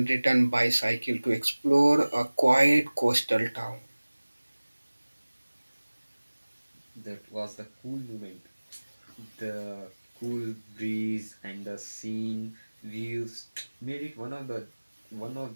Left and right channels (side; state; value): both; inverted; correlation -1.00